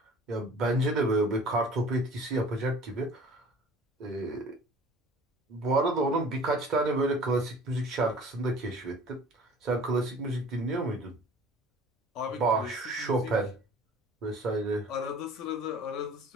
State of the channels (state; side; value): normal; both; correlation 0.47